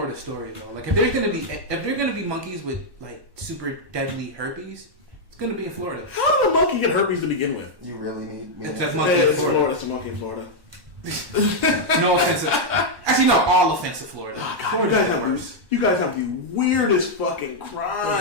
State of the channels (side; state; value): left; late; 1.2 ms